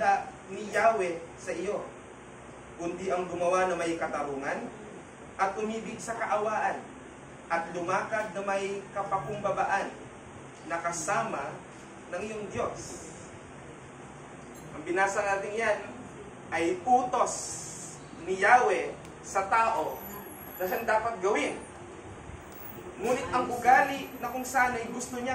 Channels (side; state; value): both; identical; correlation 1.00